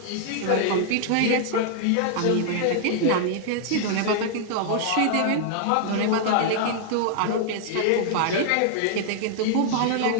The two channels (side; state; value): both; different; correlation -0.01